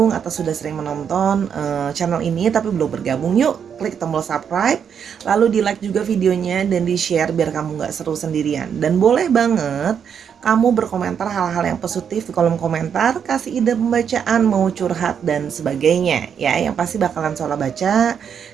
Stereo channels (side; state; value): left; quieter; 7.6 dB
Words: atau sudah sering menonton channel ini tapi belum bergabung, yuk klik tombol subscribe, lalu di like juga videonya dan di share biar kamu nggak seru sendirian. Dan boleh banget kamu berkomentar hal-hal yang positif di kolom komentar, kasih ide pembacaan, mau curhat dan sebagainya ya, yang pasti bakalan Sora baca